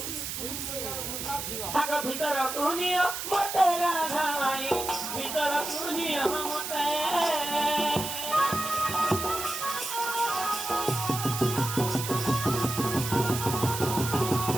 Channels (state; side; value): noise; right; hiss, 5 dB below the sound